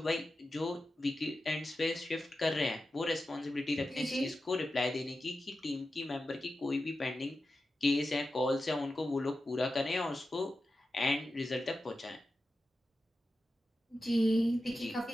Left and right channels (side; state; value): both; normal; correlation 0.92